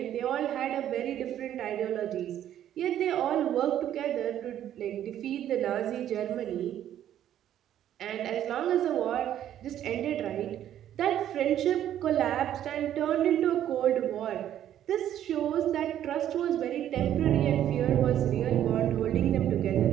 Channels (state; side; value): quieter; left; 11.2 dB